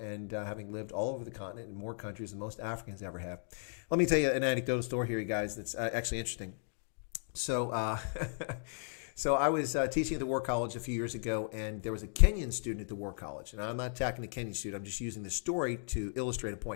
having lived all over the continent in more countries than most Africans ever have. Let me tell you an anecdotal story here, you guys, that's actually interesting. So, so I was teaching at the War College a few years ago, and there was a Kenyan student at the War College. And I'm not attacking the Kenyan student. I'm just using the story to illustrate a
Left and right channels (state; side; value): silent; right; digital silence